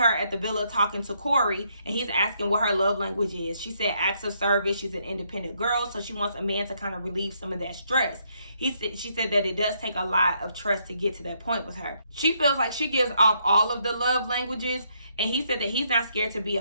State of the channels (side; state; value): both; inverted; correlation -0.73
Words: at the villa talking to Corey, and he's asking what her love language is. She said acts of service. She's an independent girl, so she wants a man to kind of relieve some of that stress. She said that it does take a lot of trust to get to that point with her. She feels like she gives off all of the love languages, and he said that he's not scared to be